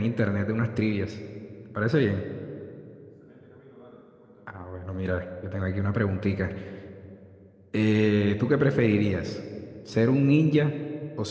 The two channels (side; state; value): both; identical; correlation 1.00